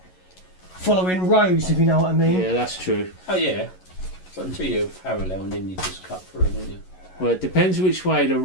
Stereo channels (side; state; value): right; late; 11 ms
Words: following rows, if you know what I mean. Yeah, that's true. Oh yeah. So until you're parallel and then you just cut through, don't you? Well, it depends which way